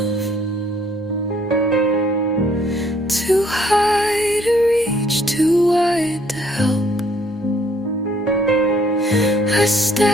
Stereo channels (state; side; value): normal; both; correlation 0.63